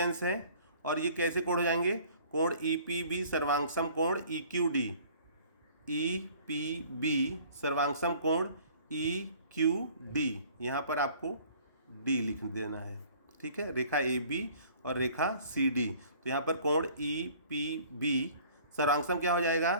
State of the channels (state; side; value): inverted; both; correlation -0.53